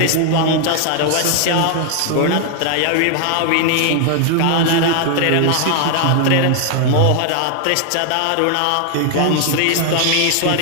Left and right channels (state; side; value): different; both; correlation 0.00